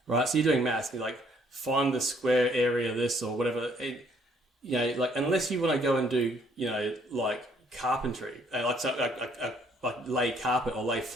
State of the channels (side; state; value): both; normal; correlation 0.65